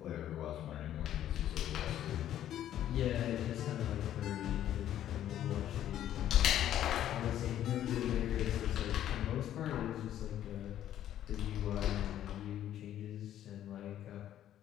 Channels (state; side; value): quieter; right; 11.6 dB